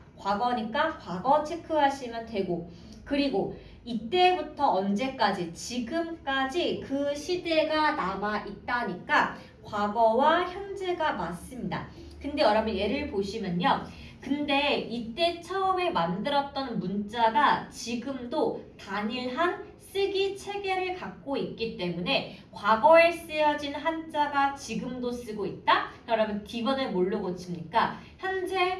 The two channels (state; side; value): identical; both; correlation 1.00